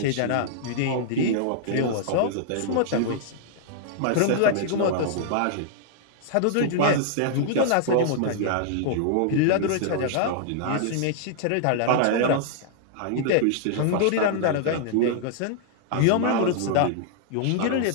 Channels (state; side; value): different; both; correlation -0.01